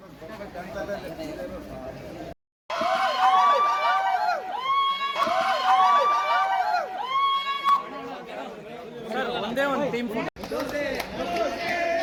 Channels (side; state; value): both; identical; correlation 1.00